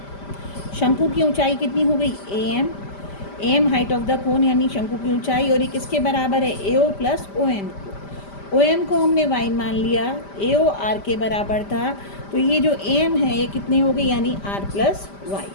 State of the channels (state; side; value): late; right; 5.1 ms